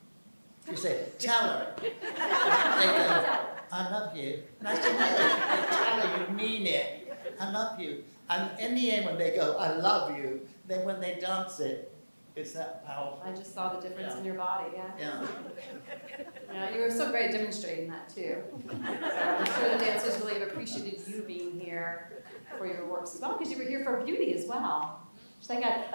you say, tell her. They go, I love you. And I say, no, tell her you mean it. I love you. And in the end, when they go, I love you, then when they dance it, it's that powerful. I just saw the difference Yeah. in your body, yeah. Yeah. Yeah, you were so great at demonstrating that too. So I'm sure the dancers really have appreciated you being here for your works as well, because you were here for beauty as well. It's like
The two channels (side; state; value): both; inverted; correlation -1.00